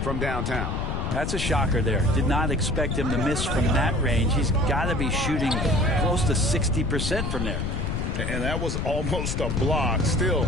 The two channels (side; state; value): left; noise; rumble, 1 dB below the sound